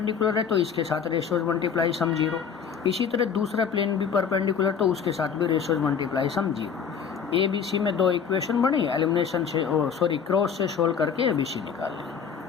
है तो इसके साथ रेशियोज मल्टीप्लाई सम 0। इसी तरह दूसरा प्लेन भी परपेंडिकुलर तो उसके साथ भी रेशियोज मल्टीप्लाई सम 0। ABC में 2 इक्वेशन बनी, एलिमिनेशन से क्रॉस से सोल्व करके ABC निकाल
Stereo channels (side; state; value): right; quieter; 7.0 dB